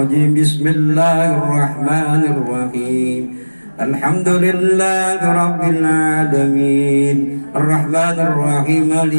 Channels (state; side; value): inverted; both; correlation -1.00